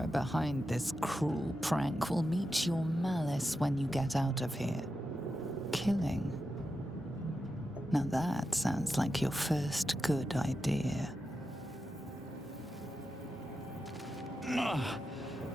behind this cruel prank will meet your malice when you get out of here. Killing. Now that sounds like your first good idea.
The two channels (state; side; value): normal; both; correlation 0.89